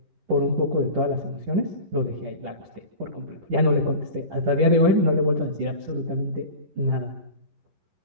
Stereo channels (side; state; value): left; late; 10 ms